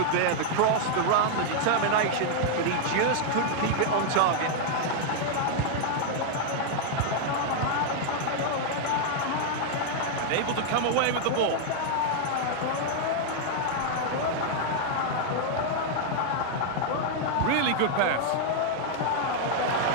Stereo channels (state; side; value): different; both; correlation 0.00